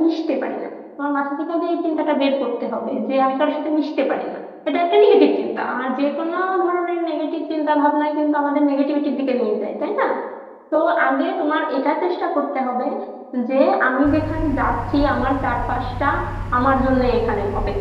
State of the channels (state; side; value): identical; both; correlation 1.00